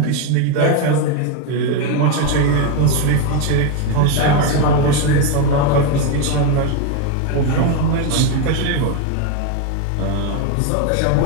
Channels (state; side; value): different; both; correlation 0.02